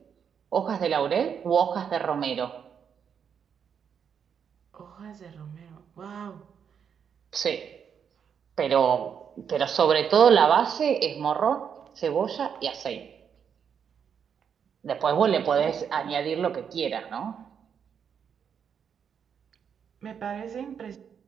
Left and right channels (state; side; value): quieter; left; 7.5 dB